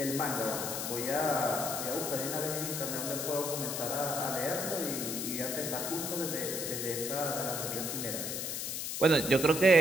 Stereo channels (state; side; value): noise; left; hiss, 3 dB below the sound